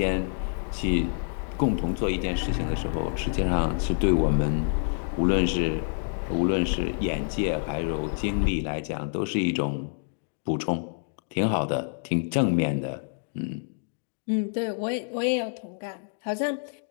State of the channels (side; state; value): right; silent; digital silence